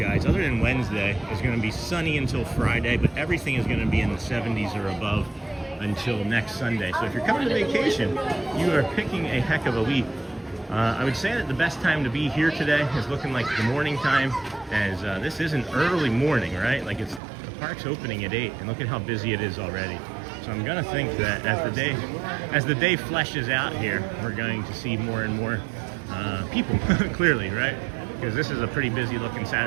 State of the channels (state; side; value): drops out; left; at 17.2 s